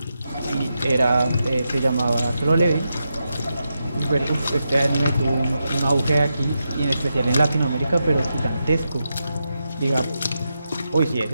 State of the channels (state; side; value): inverted; both; correlation -0.87